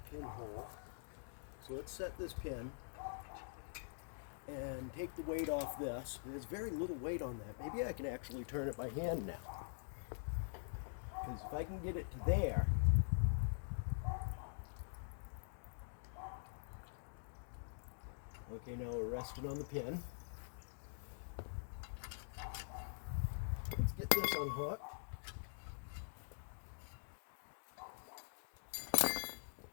pinhole, so let's set this pin and take the weight off this. There's very little weight on that. Maybe I can actually turn it by hand now, because if I can get it to there, okay, now we're resting on the pin. Let's get this unhooked.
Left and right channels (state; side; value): silent; right; digital silence